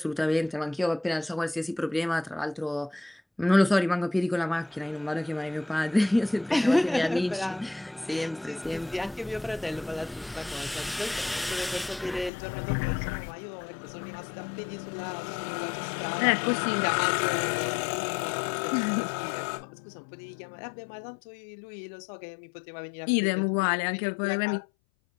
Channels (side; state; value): right; drops out; at 12.3 s